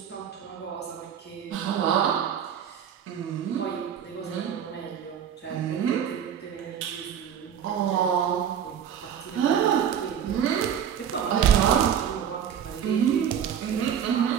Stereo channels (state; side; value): quieter; left; 8.7 dB